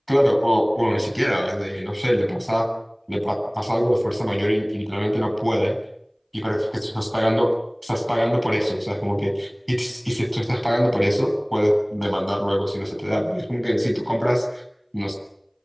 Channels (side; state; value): both; identical; correlation 1.00